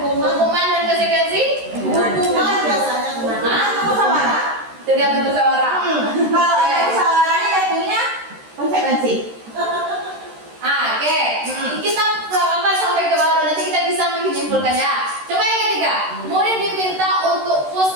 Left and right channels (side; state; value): left; late; 13 ms